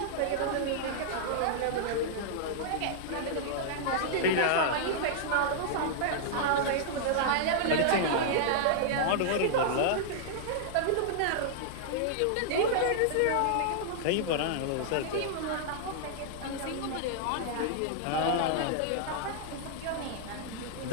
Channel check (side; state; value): both; different; correlation -0.01